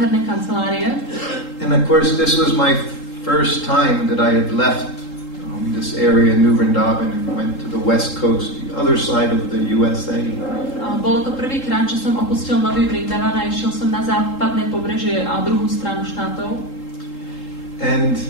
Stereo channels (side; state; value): right; late; 3.8 ms